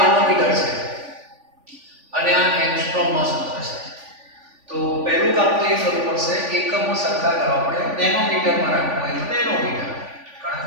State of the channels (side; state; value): left; late; 3.5 ms